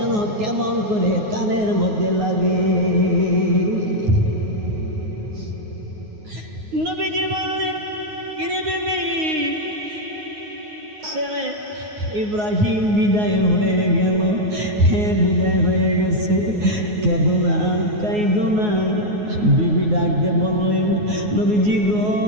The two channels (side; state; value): left; late; 9.5 ms